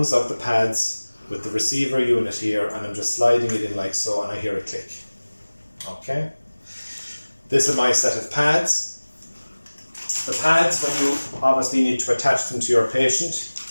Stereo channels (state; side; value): inverted; both; correlation -1.00